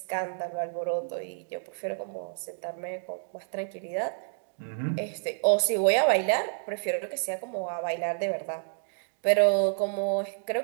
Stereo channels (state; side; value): silent; left; digital silence